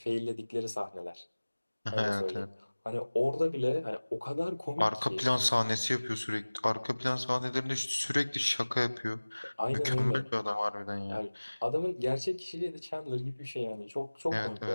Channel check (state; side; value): inverted; both; correlation -1.00